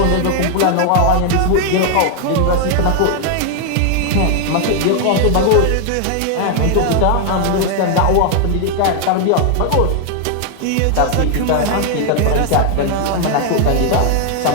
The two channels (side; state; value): both; different; correlation 0.00